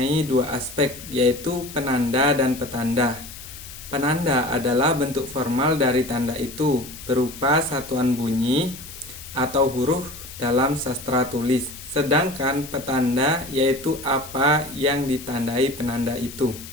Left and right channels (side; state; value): left; noise; hiss, 14 dB below the sound